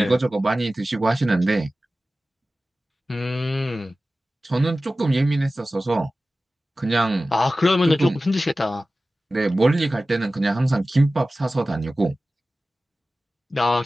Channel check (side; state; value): both; normal; correlation 0.96